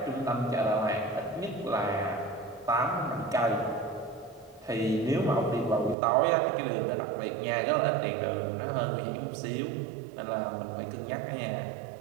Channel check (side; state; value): left; drops out; at 6.0 s